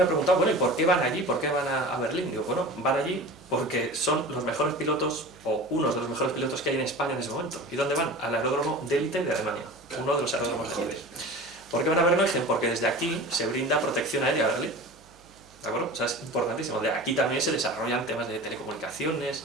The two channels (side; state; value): right; noise; hum, 27 dB below the sound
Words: ha preguntado, bueno, ¿y por qué van allí? ¿Por qué van a Berlín? Digo, bueno, van allí porque son los mejores pilotos, o unos de los mejores pilotos que hay en España en ese momento. ¿Y dónde van? Al aeródromo de élite de Alemania, uno de los aeródromos mejores. ¿Por qué van a Berlín? Porque desde aquí se brinda protección aérea a Berlín. ¿De acuerdo? O sea, es importantísimo. De aquí también se desarrollan temas de telecomunicaciones,